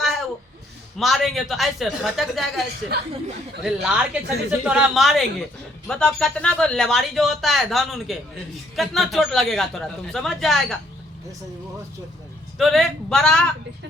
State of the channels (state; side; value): normal; both; correlation 0.66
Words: है, वो मारेंगे तो ऐसे फटक जाएगा ऐसे। अरे लार के छड़ी से तोरा मारेंगे, बताओ कितना को लेवारी जो होता है धान उनके, कितना चोट लगेगा तोरा, तुम समझ जाएगा। तो रे बड़ा